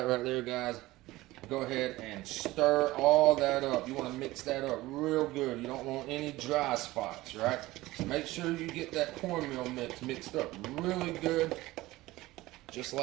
right there, guys. Go ahead and stir all that up. You want to mix that up real good. You don't want any dry spots, right? So make sure you get that cornmeal mix mixed up really good, just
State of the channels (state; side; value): quieter; left; 18.3 dB